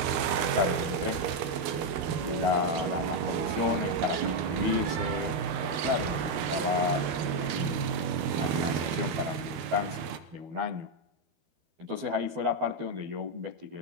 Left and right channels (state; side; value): late; left; 12 ms